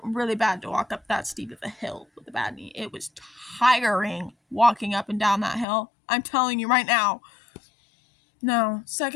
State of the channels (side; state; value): right; drops out; at 5.7 s